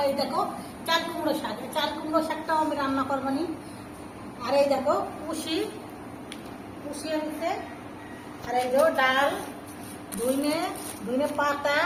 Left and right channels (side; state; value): both; identical; correlation 1.00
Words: এই দেখো চাল কুমড়ো শাক, চাল কুমড়ো শাকটাও আমি রান্না করবো নি। আর এই দেখো পুষি আনছে। আর এই যে ডাল, ধুইনে পাতা,